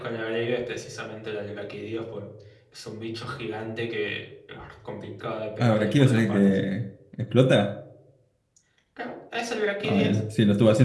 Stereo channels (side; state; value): both; identical; correlation 1.00